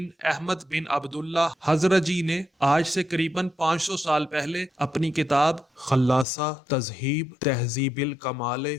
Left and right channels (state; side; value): drops out; right; at 6.2 s